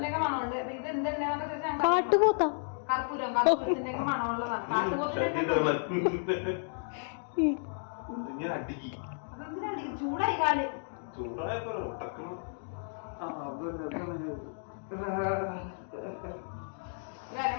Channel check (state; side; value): silent; right; digital silence